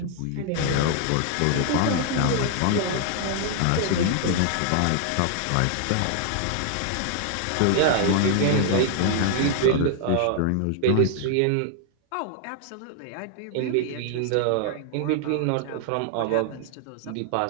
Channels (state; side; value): different; both; correlation 0.00